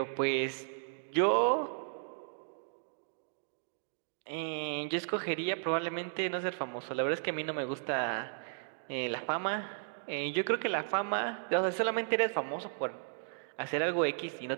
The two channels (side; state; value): left; silent; digital silence